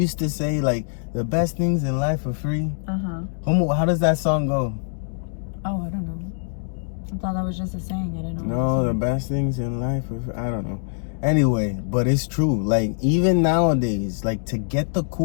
to say, like, the best things in life are free? Uh-huh. How does that song go? Oh, I don't know. I thought that was just a saying. I didn't know. No, the best things in life are free. I don't know. Anyway, but it's true. Like, even nowadays, like, to get the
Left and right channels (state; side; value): silent; right; digital silence